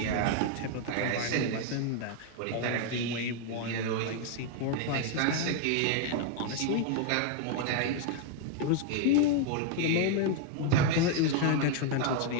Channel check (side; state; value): both; different; correlation 0.00